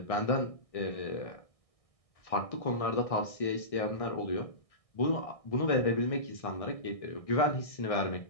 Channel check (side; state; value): right; late; 1.6 ms